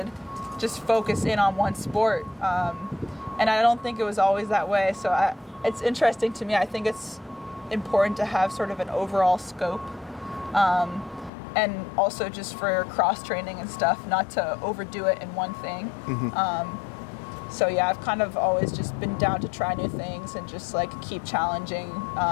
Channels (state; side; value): drops out; right; at 11.3 s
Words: just focus in on one sport. And I don't think it was always that way. So it's interesting to me. I think it's important to have sort of an overall scope. And also just for cross-training and stuff, not to overdo it in one thing. Mm-hmm. So yeah, I've kind of always just been down to try new things and just like keep challenging